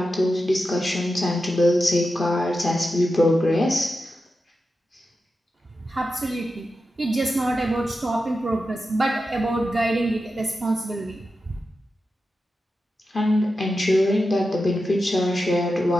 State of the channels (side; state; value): both; normal; correlation 0.90